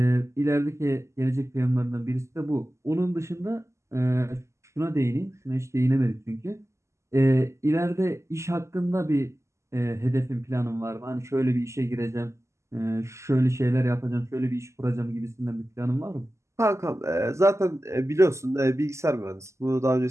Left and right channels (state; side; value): late; left; 0.13 ms